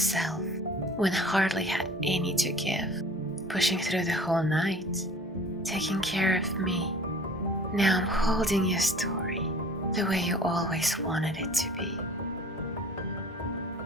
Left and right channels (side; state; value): both; normal; correlation 0.47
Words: when hardly had any to give, pushing through the whole night, taking care of me. Now I'm holding your story the way you always wanted it to be.